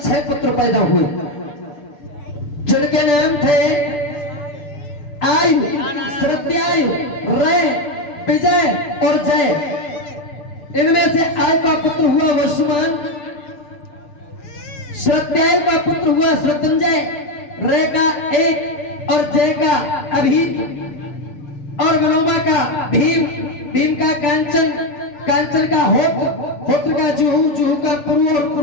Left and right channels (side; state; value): right; late; 6.8 ms